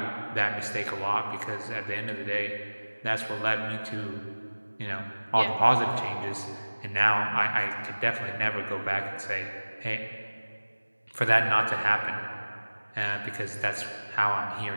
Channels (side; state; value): both; inverted; correlation -1.00